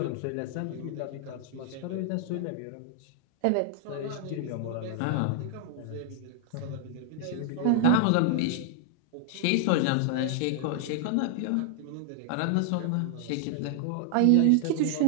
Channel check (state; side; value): different; both; correlation 0.00